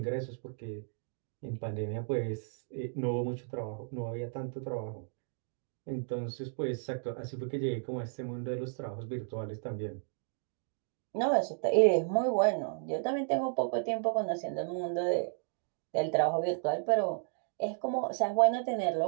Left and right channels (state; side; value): silent; left; digital silence